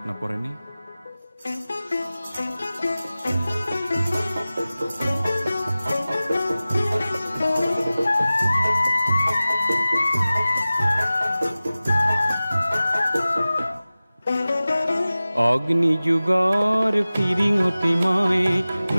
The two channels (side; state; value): both; inverted; correlation -0.97